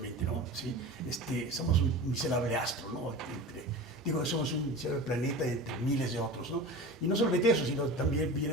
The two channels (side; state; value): both; normal; correlation 0.32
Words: ¿no? ¿Sí? Somos un miserable astro, ¿no? Somos un miserable planeta entre miles de otros, ¿no? Y no solamente eso, sino también